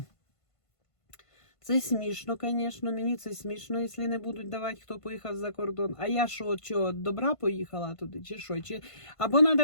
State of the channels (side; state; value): right; late; 1.5 ms